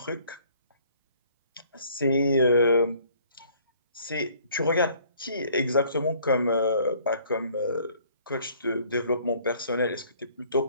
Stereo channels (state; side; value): inverted; both; correlation -0.59